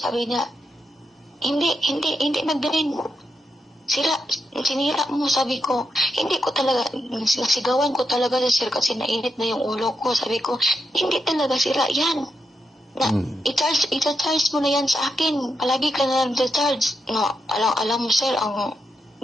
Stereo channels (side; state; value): both; normal; correlation 0.83